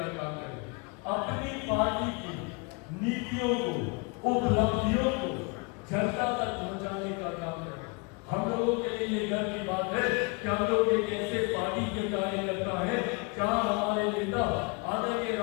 काम करें, अपनी पार्टी की नीतियों को, उपलब्धियों को जनता तक पहुंचाने का काम करें। हम लोगों के लिए ये गर्व की बात है कि हम लोग एक ऐसे पार्टी के कार्यकर्ता है जहां हमारे नेता आदरणीय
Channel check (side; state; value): right; quieter; 30.9 dB